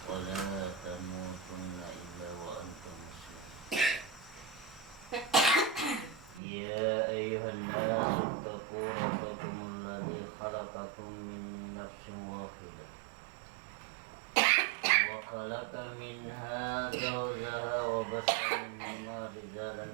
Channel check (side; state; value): left; drops out; at 6.4 s